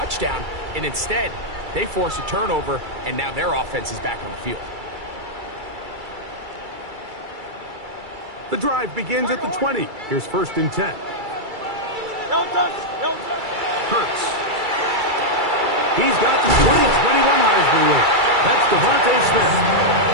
and instead, they force a turnover, and now their offense is back on the field. The drive begins at the 20. Here's 1st and 10. Hurts. He's got the 20-21 Heisman win. That's Devontae Smith.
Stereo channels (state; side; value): late; left; 2.3 ms